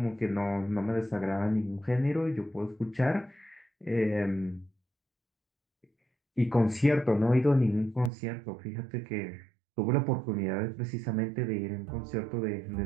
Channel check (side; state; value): left; drops out; at 8.1 s